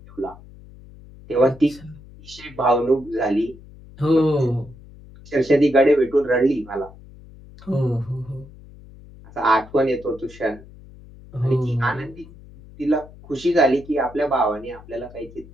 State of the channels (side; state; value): left; noise; hum, 20 dB below the sound